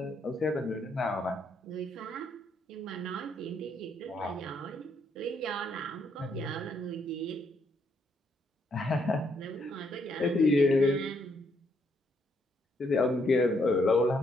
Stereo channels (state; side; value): normal; both; correlation 0.73